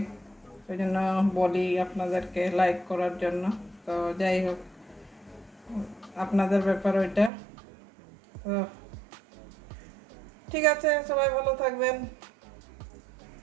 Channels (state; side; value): drops out; left; at 7.3 s